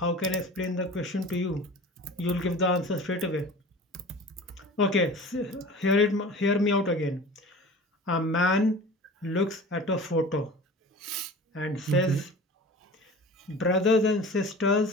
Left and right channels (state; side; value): normal; both; correlation 0.39